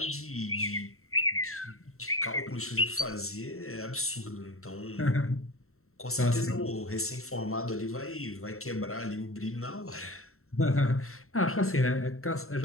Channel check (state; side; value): late; right; 0.63 ms